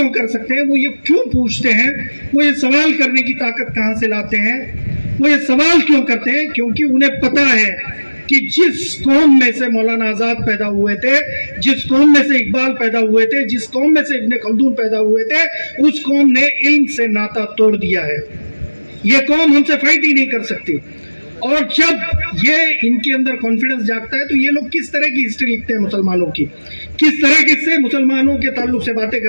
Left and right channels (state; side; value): inverted; both; correlation -1.00